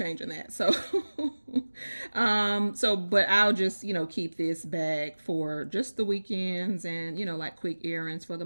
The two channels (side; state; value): both; inverted; correlation -1.00